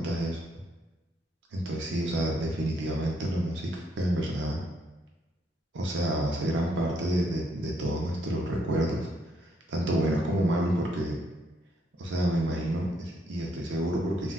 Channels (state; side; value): normal; both; correlation 0.73